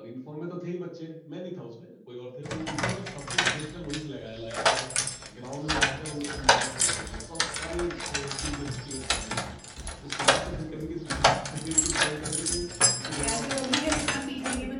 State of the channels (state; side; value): identical; both; correlation 1.00